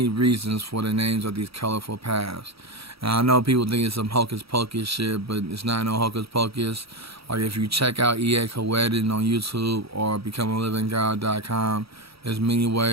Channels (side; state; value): left; late; 0.76 ms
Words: reasons for the names of these colorful paths. And I know people think it's some hocus pocus shit, but it's not no hocus pocus. Like if you check out E.A. Coedin on YouTube or becomealivinggod.com, there's many